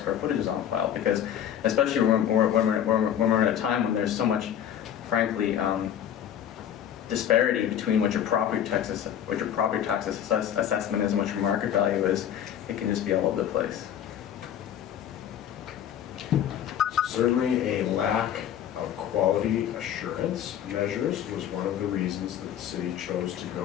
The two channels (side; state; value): right; quieter; 10.0 dB